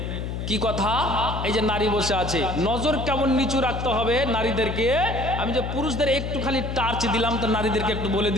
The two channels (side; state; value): left; noise; hum, 4 dB below the sound